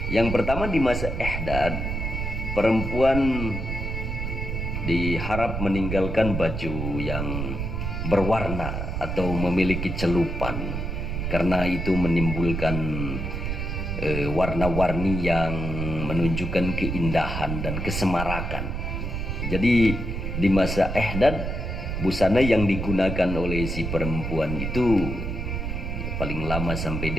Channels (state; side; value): noise; right; rumble, 3 dB below the sound